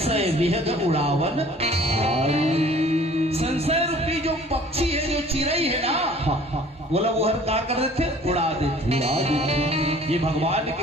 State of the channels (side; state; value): both; normal; correlation 0.51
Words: विहग उड़ावन। संशय रूपी जो पक्षी है, जो चिड़ई है ना, बोला वो हर का कर देते, उड़ा देते। ये भगवान